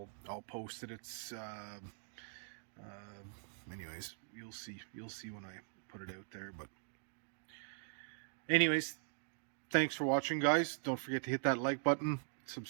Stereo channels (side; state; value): left; silent; digital silence